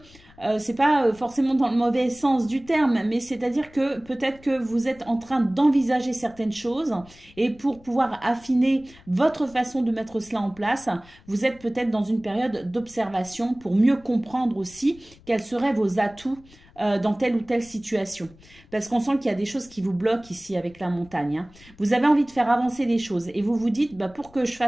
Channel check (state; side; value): noise; left; rumble, 25 dB below the sound